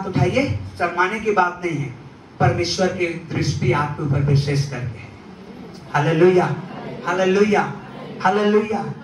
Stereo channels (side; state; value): both; identical; correlation 1.00